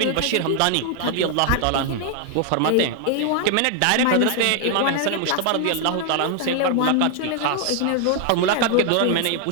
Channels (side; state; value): both; different; correlation 0.00